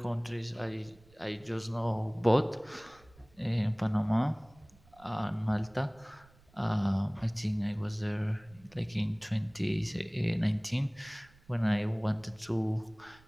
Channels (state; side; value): noise; right; rumble, 27 dB below the sound